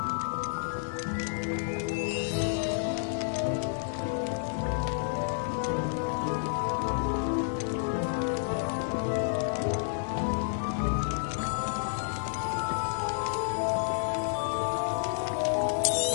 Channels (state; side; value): silent; right; digital silence